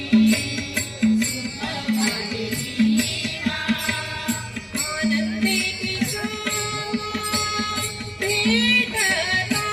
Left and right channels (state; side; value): identical; both; correlation 1.00